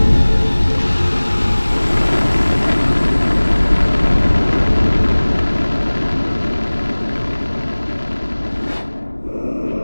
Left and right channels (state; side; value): inverted; both; correlation -1.00